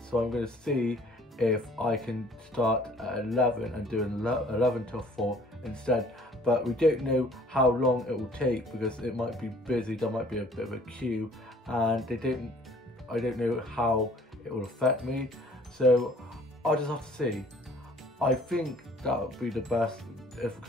I'm going to see if I can start at 11 and do 11 till 4 instead. But we don't know how long it will take, because it might be busy, there might be a bit of a queue, and I don't know how it will affect me, so I'll just have to see. I think that would be the best,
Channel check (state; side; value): normal; both; correlation 0.55